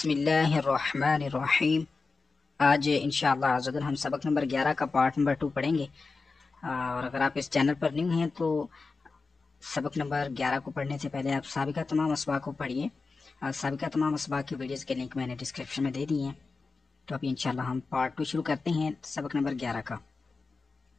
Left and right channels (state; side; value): quieter; right; 4.2 dB